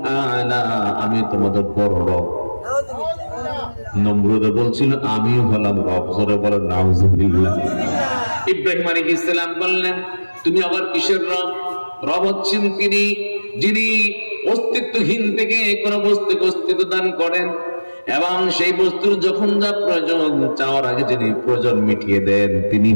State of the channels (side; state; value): both; inverted; correlation -1.00